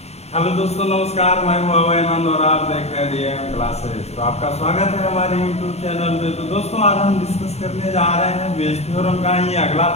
दोस्तों, नमस्कार। मैं हूं अभय आनंद और आप देख रहे हैं डीएम क्लासेस। तो आपका स्वागत है हमारे यूट्यूब चैनल में। तो दोस्तों, आज हम डिस्कस करने जा रहे हैं बेस थ्योरम का ही अगला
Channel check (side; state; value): right; late; 0.31 ms